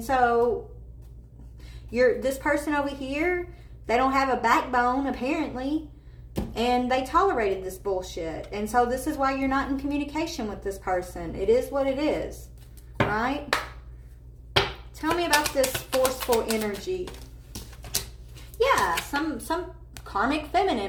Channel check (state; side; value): identical; both; correlation 1.00